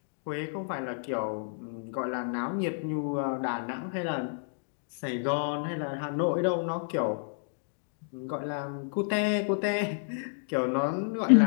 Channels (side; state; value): right; silent; digital silence